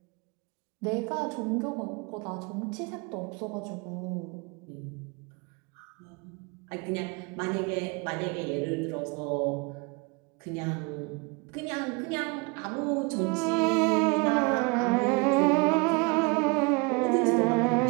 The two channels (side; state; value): left; quieter; 28.9 dB